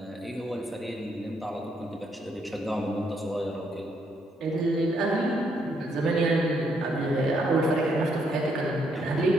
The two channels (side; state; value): both; normal; correlation 0.74